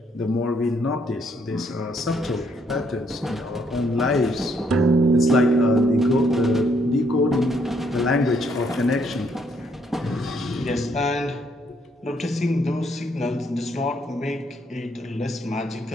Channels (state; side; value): normal; both; correlation 0.71